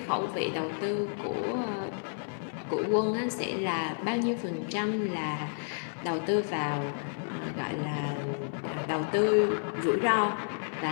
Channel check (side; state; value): right; silent; digital silence